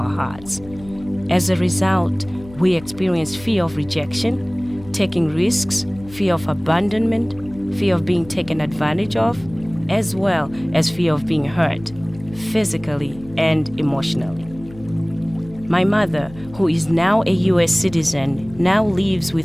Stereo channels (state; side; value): noise; left; hum, 19 dB below the sound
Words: hearts. As a result, we experienced fear of rejection, taking risks, fear of abandonment, fear of being taken advantage of, as well as fear of being hurt, physically and emotionally. My mother, who is now a U.S. citizen, now lives